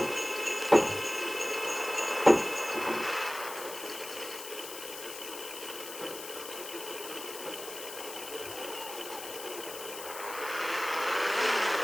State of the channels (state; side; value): noise; left; hiss, 10 dB below the sound